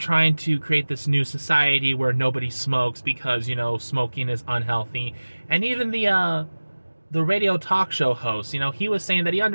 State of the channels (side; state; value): both; inverted; correlation -1.00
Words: to create this new society where nobody smokes because, you know, smoking is unhealthy. And even the radio talk show host, you know, he was saying that he